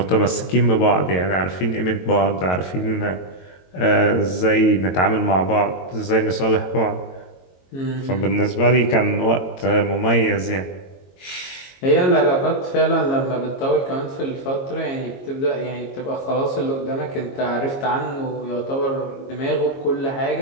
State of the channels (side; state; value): right; late; 22 ms